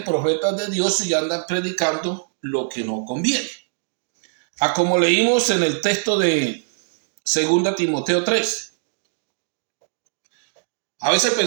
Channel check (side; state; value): left; silent; digital silence